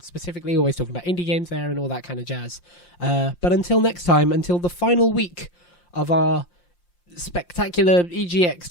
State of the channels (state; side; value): late; right; 5.7 ms